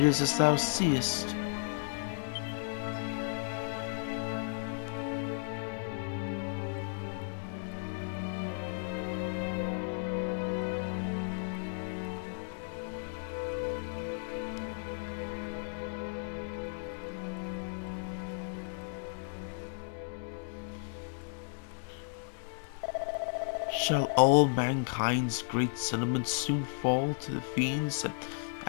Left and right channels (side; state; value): right; silent; digital silence